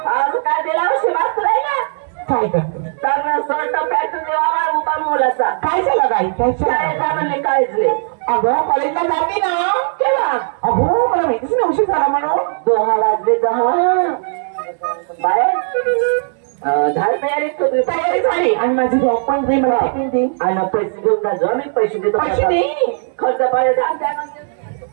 आज काय दिला असे मागतोय ना काय करतो चांगला शर्ट पॅन्ट देवा उभा मुलाचा काय झालं गाई काय शाळेचा म्हणले काहीच नाही अगं कॉलेजला जाते ना केव्हा अगो मला माहितीच नाही उशीर झाला म्हणून 10 वाजले 10 बाहेर झाड तयारी झाली आणि माझी जॉब पण दे मला टिफिन दे आणि पैसे घेऊन जा जो मी पैसे देतो पैसे दे खर्च पाहिजे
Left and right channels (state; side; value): silent; left; digital silence